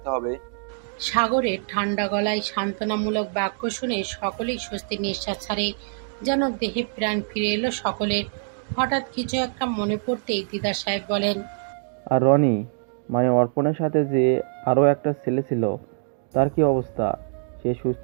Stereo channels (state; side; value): silent; left; digital silence